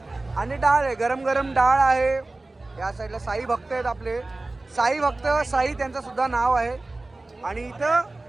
आणि डाळ आहे, गरम गरम डाळ आहे. या साईडला साई भक्त आहेत आपले, साई भक्त साई त्यांचं सुद्धा नाव आहे. आणि इथं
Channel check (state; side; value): quieter; left; 3.0 dB